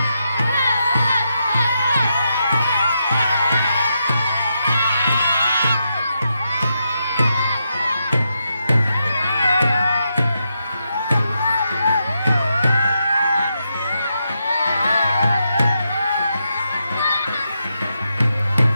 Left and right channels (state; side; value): inverted; both; correlation -0.83